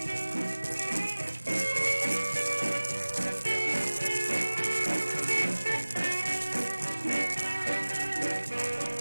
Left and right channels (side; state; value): both; inverted; correlation -1.00